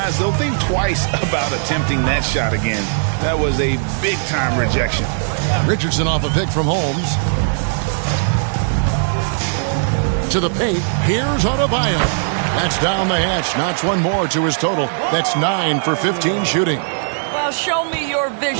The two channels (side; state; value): left; silent; digital silence